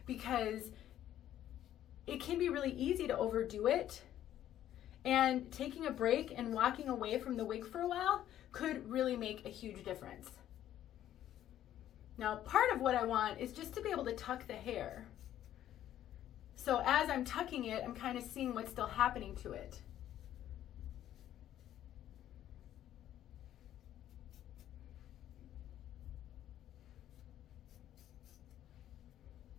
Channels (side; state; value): right; quieter; 11.9 dB